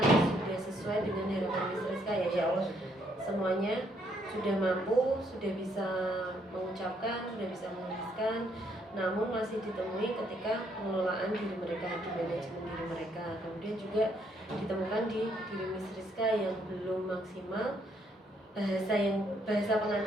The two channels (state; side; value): normal; both; correlation 0.71